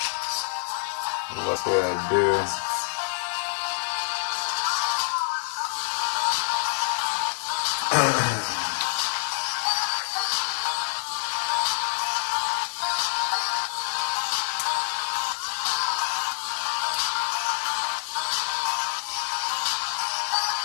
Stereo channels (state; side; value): silent; right; 61 dB below the other